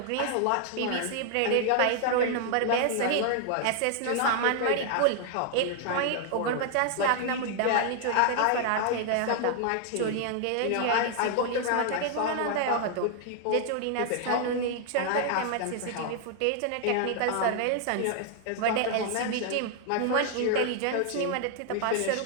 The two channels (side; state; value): both; different; correlation 0.00